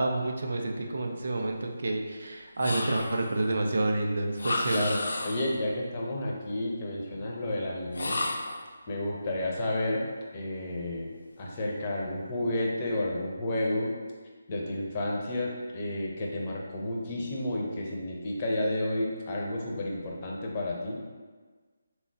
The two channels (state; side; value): inverted; both; correlation -0.86